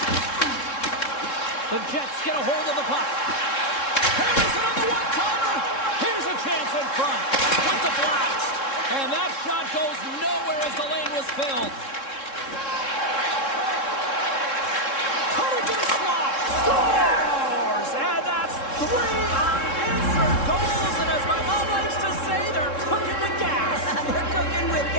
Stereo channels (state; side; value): late; right; 3.7 ms